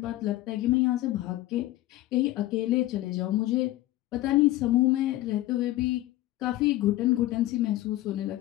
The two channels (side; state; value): right; quieter; 16.3 dB